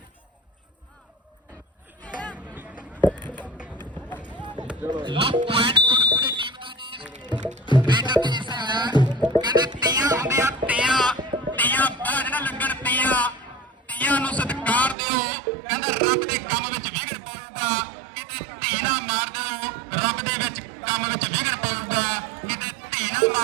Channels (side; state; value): left; drops out; at 15.0 s